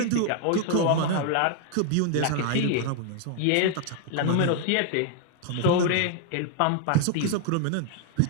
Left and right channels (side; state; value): both; different; correlation 0.00